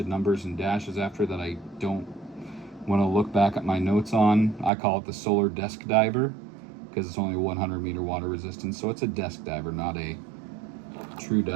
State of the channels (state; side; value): drops out; left; at 4.7 s